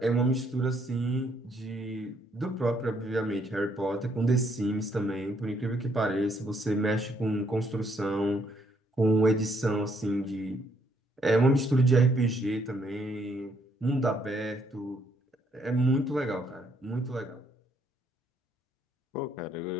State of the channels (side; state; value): both; normal; correlation 0.70